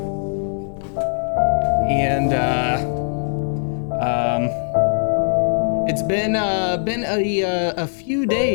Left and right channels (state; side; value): silent; right; 65 dB below the other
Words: And, it's been a few